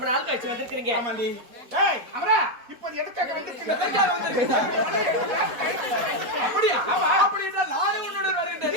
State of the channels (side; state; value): left; late; 4.1 ms